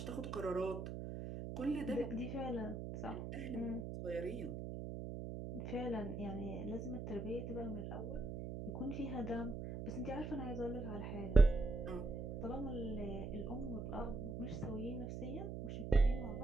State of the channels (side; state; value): right; noise; hum, 5 dB below the sound